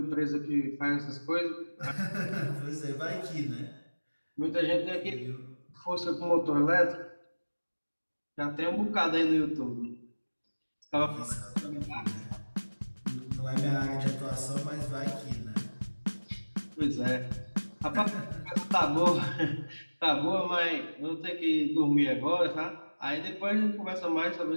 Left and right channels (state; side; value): inverted; both; correlation -1.00